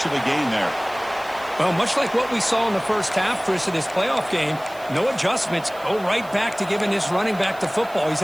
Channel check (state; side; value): noise; right; hiss, 22 dB below the sound